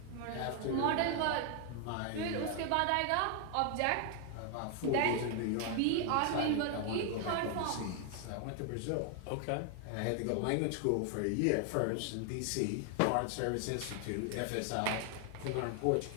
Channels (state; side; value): different; both; correlation 0.00